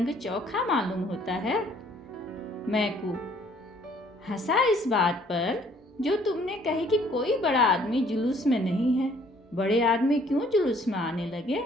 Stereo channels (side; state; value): both; normal; correlation 0.61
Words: चोखा मालूम होता है। मैकू हंसा इस बात पर जो तुमने कही कि कोई बड़ा आदमी जुलूस में नहीं है। बड़े आदमी क्यों जुलूस में आने लगे?